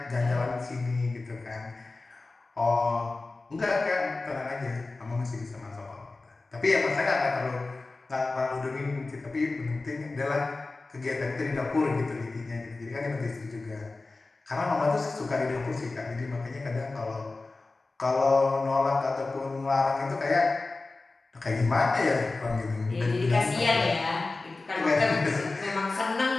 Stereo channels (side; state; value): right; quieter; 3.5 dB